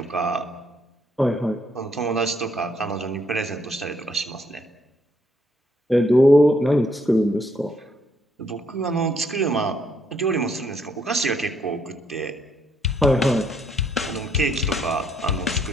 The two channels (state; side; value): normal; both; correlation 0.71